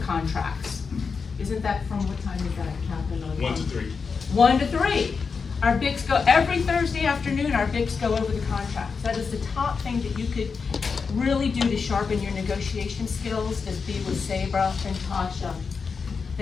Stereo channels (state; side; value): quieter; right; 5.3 dB